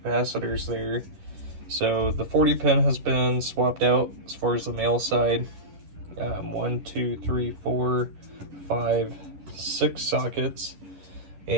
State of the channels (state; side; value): late; left; 11 ms